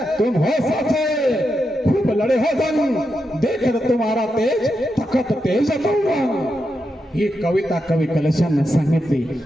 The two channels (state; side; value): normal; both; correlation 0.86